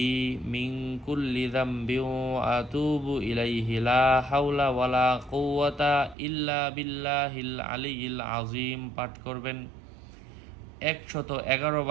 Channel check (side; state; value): left; drops out; at 6.2 s